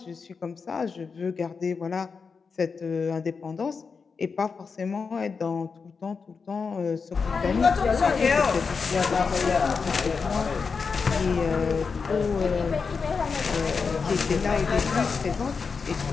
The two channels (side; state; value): right; quieter; 5.2 dB